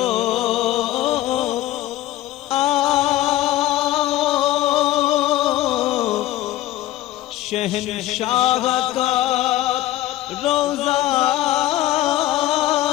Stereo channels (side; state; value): right; quieter; 15.0 dB